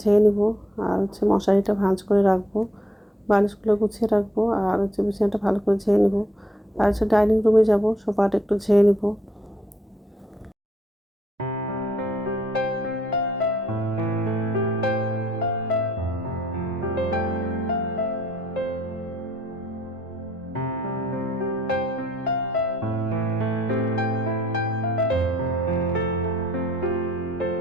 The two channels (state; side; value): normal; both; correlation 0.69